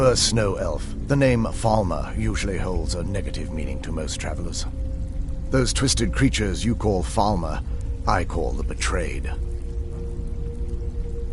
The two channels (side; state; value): both; identical; correlation 1.00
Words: Snow Elf. The name Falmer usually holds a negative meaning to most travelers. Those twisted creatures you call Falmer, I call the Betrayed.